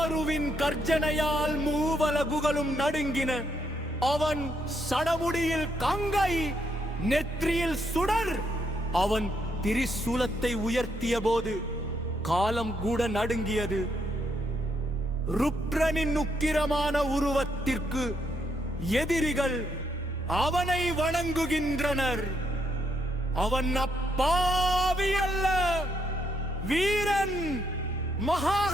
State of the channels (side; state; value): both; normal; correlation 0.76